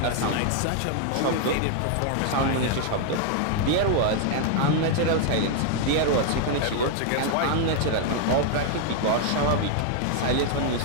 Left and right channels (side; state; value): both; different; correlation 0.00